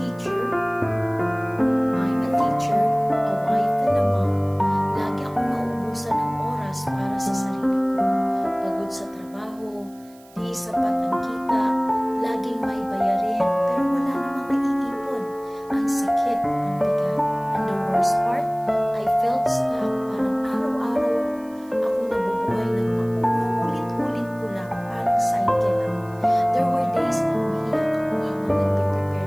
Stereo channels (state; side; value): noise; right; hiss, 27 dB below the sound